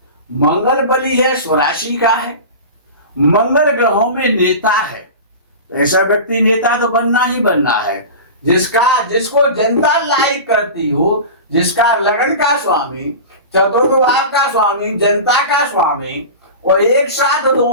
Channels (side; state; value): both; inverted; correlation -0.30